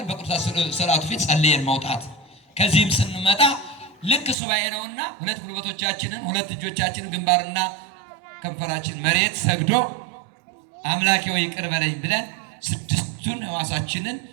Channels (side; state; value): left; drops out; at 4.4 s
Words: በቅዱስ ስዕላቱ ፊት ጸልየን መውጣት። ከዚህም ስንመጣ ልክ ሱባኤ ነውና ሁለት ጉልበቶቻችንን ሁለት እጆቻችንን ግንባርና ከንፈራችን መሬት ሰግዶ አምላኬ ሆይ ይቅር በለኝ ብለን ስድስቱን ሕዋሳችንን